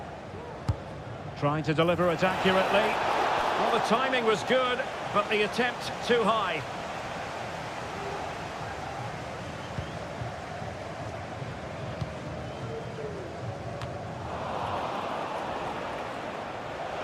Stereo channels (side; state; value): both; identical; correlation 1.00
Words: Trying to deliver it accurately. Well, the timing was good, but the attempt too high.